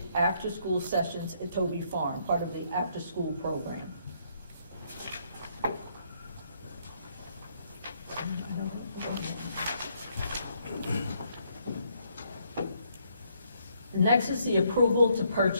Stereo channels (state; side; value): inverted; both; correlation -0.71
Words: after-school sessions at Toby Farm, part of the after-school program. Next is the approval to